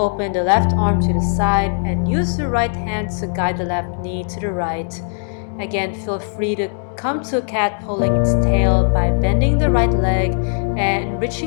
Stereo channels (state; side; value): silent; right; digital silence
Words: the left arm to the side, and use the right hand to guide the left knee to the right. Again, feel free to come to a cat pulling its tail by bending the right leg and